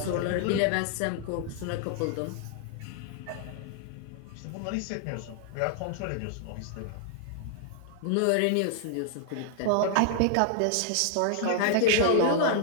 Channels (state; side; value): different; both; correlation 0.00